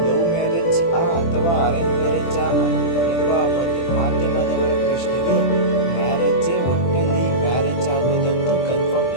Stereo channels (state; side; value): late; right; 24 ms